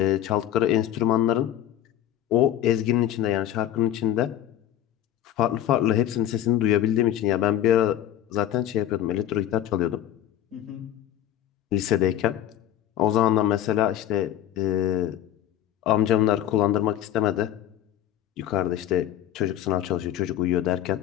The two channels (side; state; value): right; quieter; 11.9 dB